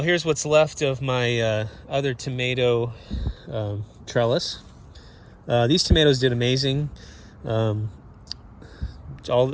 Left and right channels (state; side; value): identical; both; correlation 1.00